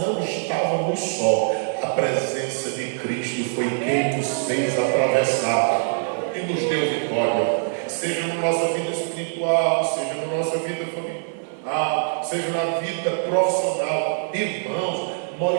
estávamos só. A presença de Cristo foi quem nos fez atravessar e nos deu vitória. Seja na nossa vida espiritual, seja na nossa vida familiar, seja na vida profissional. Irmãos,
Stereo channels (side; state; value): left; silent; 63 dB below the other